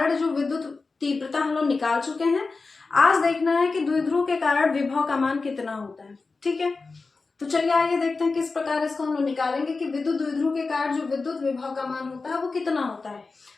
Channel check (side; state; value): right; quieter; 4.0 dB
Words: जो विद्युत तीव्रता हम लोग निकाल चुके हैं, आज देखना है कि द्विध्रुव के कारण विभव का मान कितना होता है। ठीक है, तो चलिए आइए देखते हैं किस प्रकार इसको हम लोग निकालेंगे कि विद्युत द्विध्रुव के कारण जो विद्युत विभव का मान होता है वो कितना होता है।